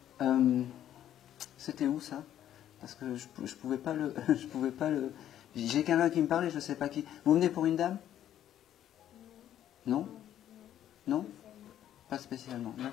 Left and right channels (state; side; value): quieter; right; 11.2 dB